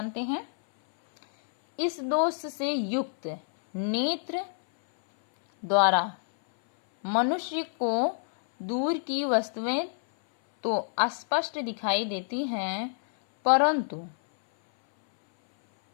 हैं। इस दोष से युक्त नेत्र द्वारा मनुष्य को दूर की वस्तुएं तो स्पष्ट दिखाई देती हैं, परंतु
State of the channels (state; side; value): silent; right; 58 dB below the other